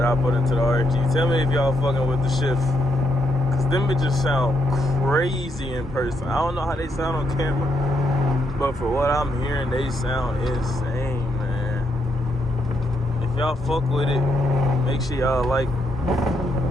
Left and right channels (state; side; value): normal; both; correlation 0.78